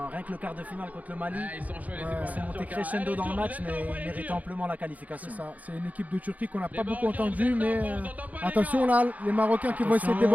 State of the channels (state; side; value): late; left; 0.075 ms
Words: rien que le quart de finale contre le Mali, ils sont montés crescendo dans le match, mais ils méritaient amplement la qualification. C'est ça, c'est une équipe de Turquie qu'on n'a pas beaucoup entendue, mais attention là, les Marocains qui vont essayer de